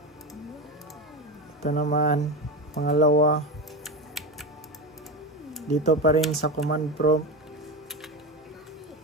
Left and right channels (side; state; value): both; normal; correlation 0.20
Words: Ito naman pangalawa, dito pa rin sa command prompt,